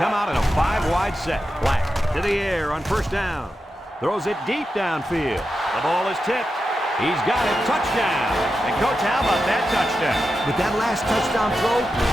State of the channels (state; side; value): normal; both; correlation 0.89